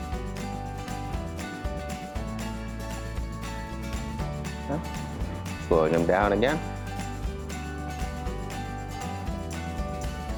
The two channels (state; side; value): identical; both; correlation 1.00